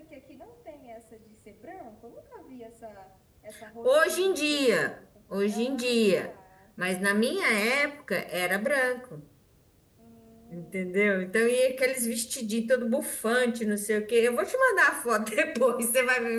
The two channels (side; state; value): both; identical; correlation 1.00